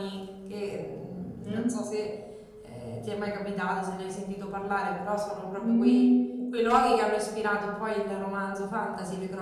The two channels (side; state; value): both; identical; correlation 1.00